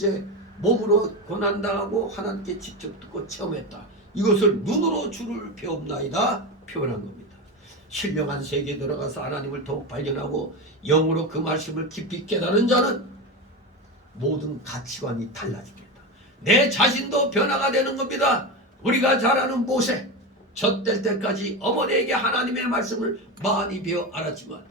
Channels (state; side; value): normal; both; correlation 0.19